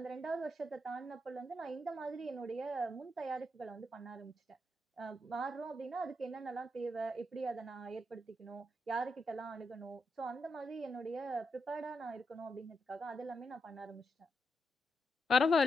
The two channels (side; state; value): both; normal; correlation 0.83